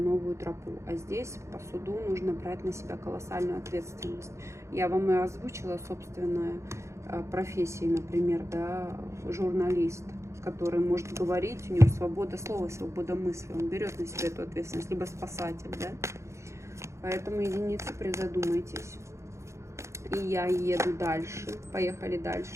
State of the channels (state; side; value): late; left; 0.14 ms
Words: тропу. А здесь по суду нужно брать на себя колоссальную ответственность. Я вам и озвучила собственную профессию, например, да, журналист, который может говорить, у него свобода слова, свобода мысли, он берет на себя эту ответственность, либо спасатель, да. Поэтому, единицы, призадумайтесь. И я еду дальше. Поехали